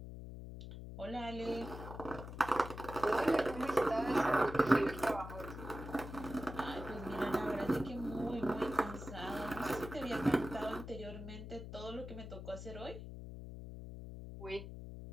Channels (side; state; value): left; noise; hum, 10 dB below the sound